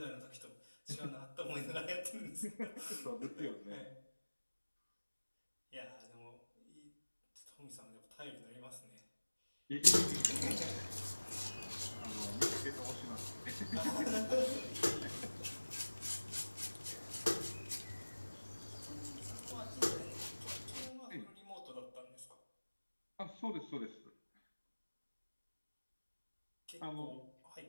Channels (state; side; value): inverted; both; correlation -1.00